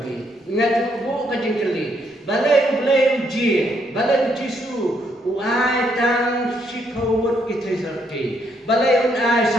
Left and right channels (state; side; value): normal; both; correlation 0.73